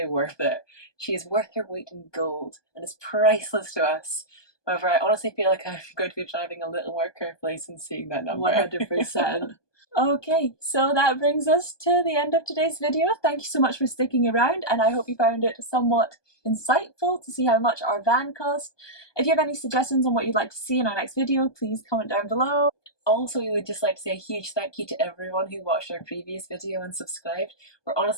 worth it. She is worth her weight in gold and is priceless to us. However, I honestly feel like I'm going to be driving a little more carefully since seeing that number. 100%. Okay, so that brings us to the end of today's video. Thank you so much for sticking around, and I hope you found it somewhat insightful to see how much our van cost. If you have any suggestions on what you'd like to see in our next video, please comment down below. Also, we would just like to say a huge thank you to everyone who watched our previous video and subscribed. We're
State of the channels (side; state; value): right; late; 1.2 ms